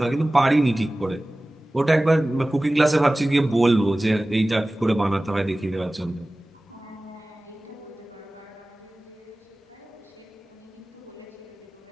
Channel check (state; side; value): normal; both; correlation 0.97